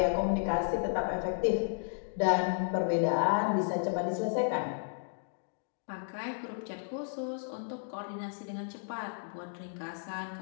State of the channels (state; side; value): silent; right; digital silence